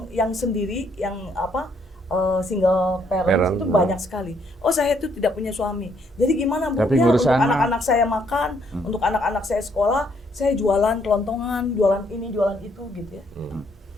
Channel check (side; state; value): both; normal; correlation 0.69